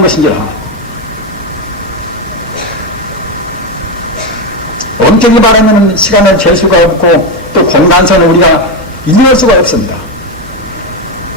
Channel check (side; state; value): both; normal; correlation 0.11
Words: 것인지라 엄격히 말하면 시간을 잴 수가 없고 또 공간선을 우리가 인정할 수가 없습니다.